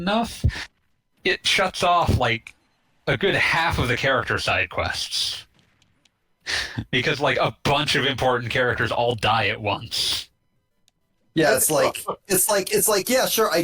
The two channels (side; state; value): both; identical; correlation 1.00